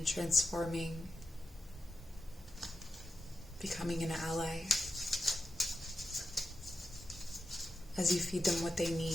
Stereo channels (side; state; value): both; normal; correlation 0.89